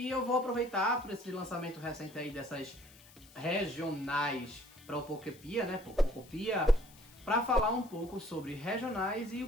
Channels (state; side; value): noise; left; hiss, 23 dB below the sound